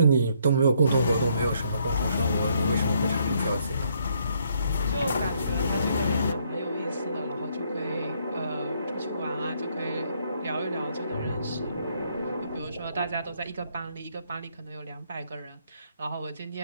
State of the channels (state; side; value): inverted; both; correlation -0.70